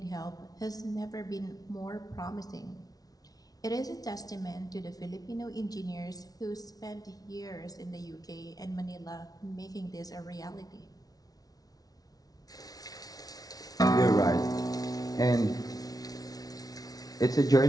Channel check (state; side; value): late; right; 0.18 ms